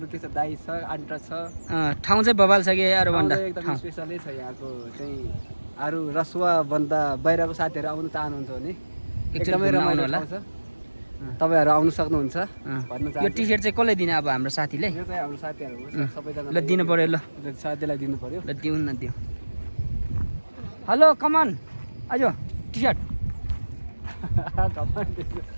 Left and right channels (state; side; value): inverted; both; correlation -1.00